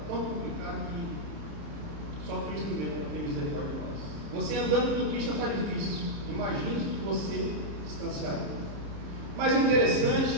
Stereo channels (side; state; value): left; late; 30 ms